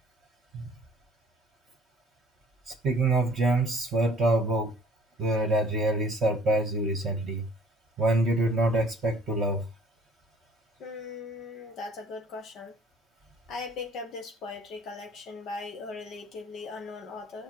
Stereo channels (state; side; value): normal; both; correlation 0.55